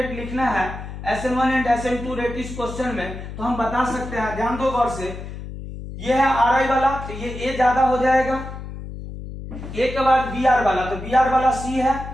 लिखना है, SN1 एंड SN2 रेट इस क्वेश्चन में, तो हम बता सकते हैं, ध्यान दो गौर से, ये है Ri वाला, तो ये A ज्यादा हो जाएगा, A के बाद Br वाला, तो Br वाला C है,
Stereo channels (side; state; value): left; noise; hum, 10 dB below the sound